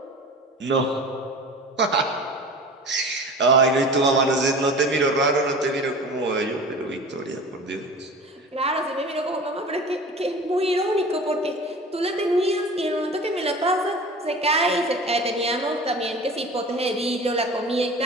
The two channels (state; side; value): normal; both; correlation 0.38